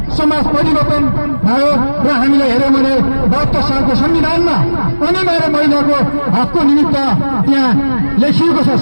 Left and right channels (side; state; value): both; inverted; correlation -1.00